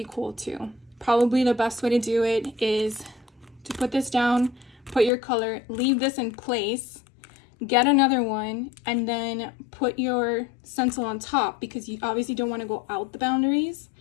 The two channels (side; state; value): right; drops out; at 5.1 s